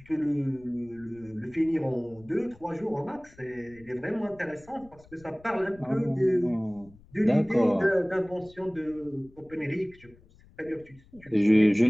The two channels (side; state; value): left; noise; rumble, 25 dB below the sound